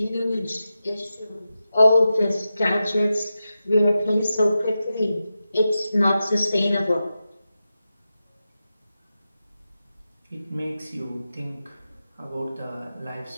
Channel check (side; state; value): both; inverted; correlation -0.91